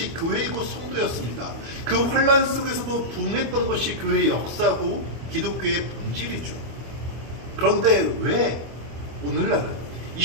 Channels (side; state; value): left; late; 24 ms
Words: 교회이고 성도였습니다. 그 환난 속에서도 부흥했던 것이 교회의 역사고 기독교의 본질이죠. 그런데 왜 오늘날은 이